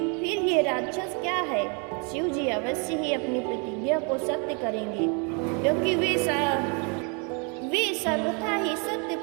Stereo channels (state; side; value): quieter; left; 35.3 dB